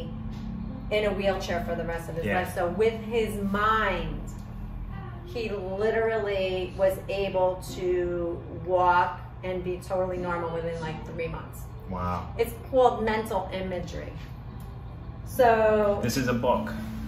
in a wheelchair for the rest of his life. So with his mind, he literally was able to walk and be totally normal within like 3 months. Wow. It's called mental imagery. So this is a book.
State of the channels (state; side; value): identical; both; correlation 1.00